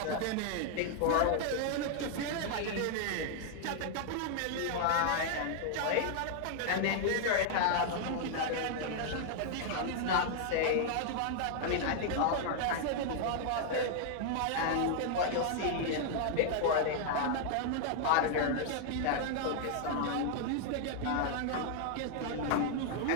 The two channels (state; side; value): different; both; correlation 0.00